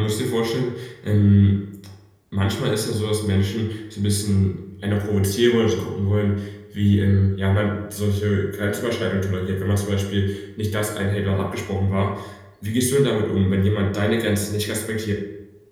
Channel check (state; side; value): identical; both; correlation 1.00